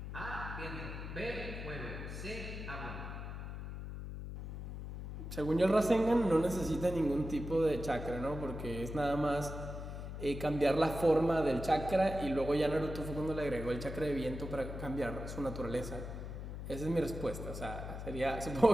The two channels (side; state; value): left; noise; hum, 8 dB below the sound